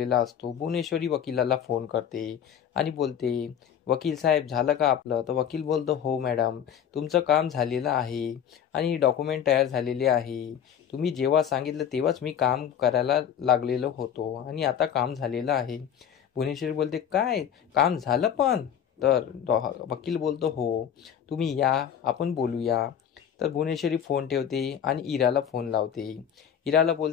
असतो. भुवनेश्वरी वकिलाला फोन करते आणि बोलते, वकील साहेब झालं का आपलं? तर वकील बोलतो, हो मॅडम, तुमचं काम झालेलं आहे आणि डॉक्युमेंट तयार झालेले आहे. तुम्ही जेव्हा सांगितलं तेव्हाच मी काम करायला लागलेलो होतो आणि आता काम झालेलं आहे. भुवनेश्वरी बोलते, काय काम झालं पण? तर वकील बोलतो, हो, तुम्ही या, आपण बोलूया. तर भुवनेश्वरी फोन ठेवते आणि इराला फोन लावते. इराला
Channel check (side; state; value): right; quieter; 8.9 dB